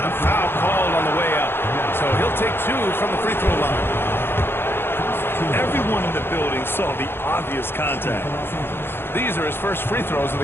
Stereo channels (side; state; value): right; late; 0.11 ms